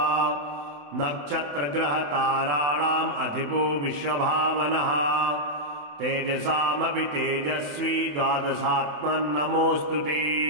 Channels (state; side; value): late; left; 28 ms